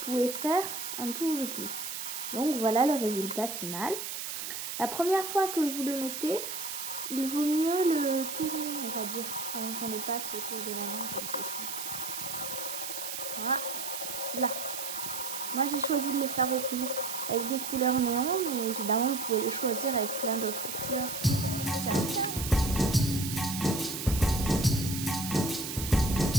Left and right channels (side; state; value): right; noise; hiss, 5 dB below the sound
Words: faire un tour de plus. Donc voilà le résultat final. La première fois que vous le mettez, il vaut mieux le tourner, on va dire, avant qu'on le passe autour de la main comme ceci. Voilà. Là. Moi j'ai choisi de le faire avec des couleurs néon, mais évidemment vous pouvez le choisir avec plein d'autres couleurs.